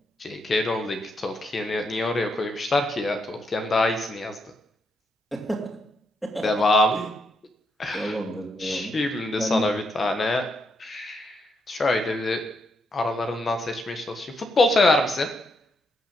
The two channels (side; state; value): both; normal; correlation 0.79